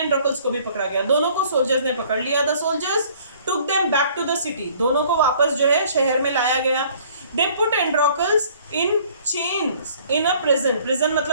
को भी पकड़ा गया, दोनों को सोल्जर्स ने पकड़ लिया। The soldiers took them back to the city, दोनों को वापस जो है शहर में लाया गया। They put Androcles in chains in a prison, prison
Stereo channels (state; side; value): inverted; both; correlation -0.56